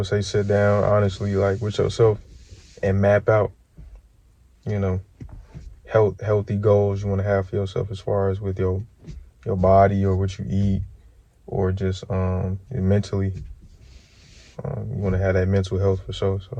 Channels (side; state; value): both; identical; correlation 1.00